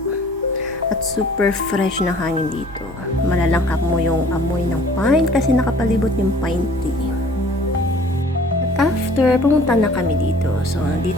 At super fresh na hangin dito. Malalangkap mo yung amoy ng pine kasi nakapalibot yung pine tree. At after, pumunta na kami dito. So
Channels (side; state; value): both; normal; correlation 0.52